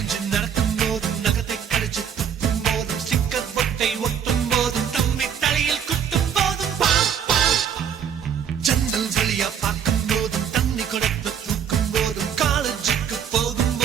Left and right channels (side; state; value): left; quieter; 8.3 dB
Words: நடக்கும் போதும் நகத்தை கடிச்சு துப்பும் போதும் ஸ்டிக்கர் பொட்டை ஒட்டும் போதும் தம்பி தலையில் குட்டும் போதும் ஜன்னல் வெளியா பார்க்கும் போதும் தண்ணி கொடுத்து தூக்கும் போதும் காலேஜுக்கு போகும்